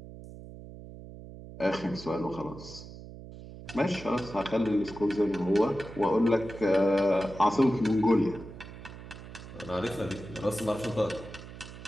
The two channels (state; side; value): noise; right; hum, 14 dB below the sound